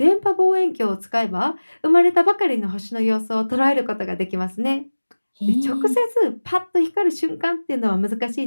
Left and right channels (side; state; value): both; inverted; correlation -1.00